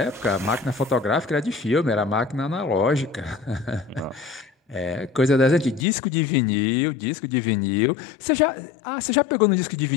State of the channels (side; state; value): right; drops out; at 5.9 s